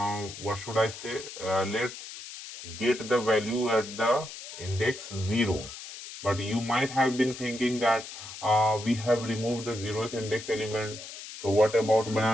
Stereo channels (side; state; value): left; noise; hiss, 12 dB below the sound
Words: what should I say, let's get the value at the index 0. But you might have been thinking that we have removed the 0th index element, so what about